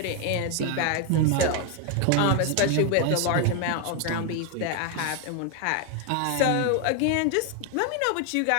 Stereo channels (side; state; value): both; different; correlation 0.01